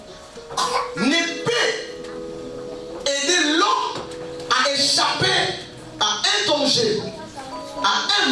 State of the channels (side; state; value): both; identical; correlation 1.00